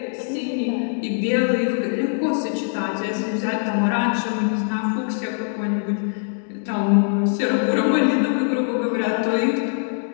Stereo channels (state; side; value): silent; right; 64 dB below the other